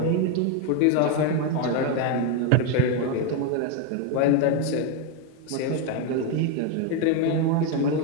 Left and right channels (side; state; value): both; different; correlation 0.01